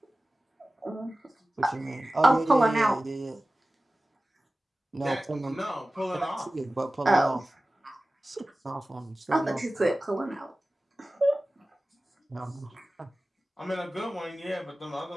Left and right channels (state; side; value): normal; both; correlation 0.97